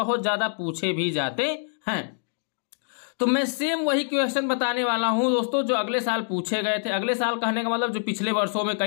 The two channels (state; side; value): silent; right; digital silence